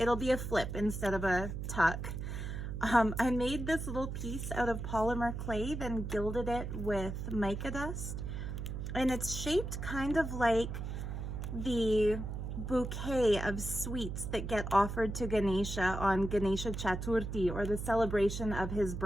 be a flip instead of a tuck. I made this little piece out of polymer clay, then gilded it with mica dust. And it's shaped kind of like the bouquet of sweets that get offered to Ganesha on Ganesha Chaturthi, or the celebration of his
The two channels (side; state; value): right; noise; hum, 5 dB below the sound